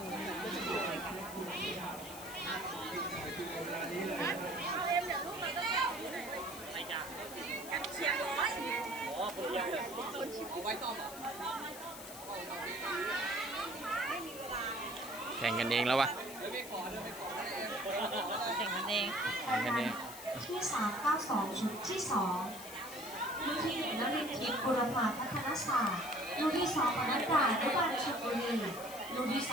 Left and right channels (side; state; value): left; noise; hiss, 13 dB below the sound